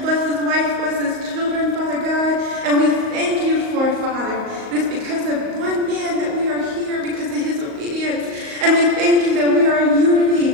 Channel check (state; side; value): late; left; 38 ms